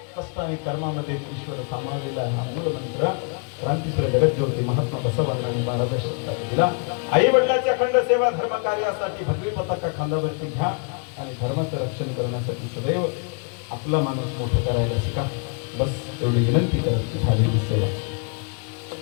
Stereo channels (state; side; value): quieter; right; 36.3 dB